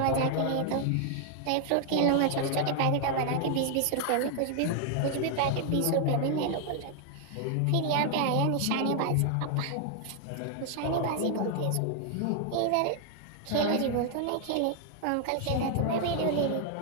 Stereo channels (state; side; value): different; both; correlation 0.00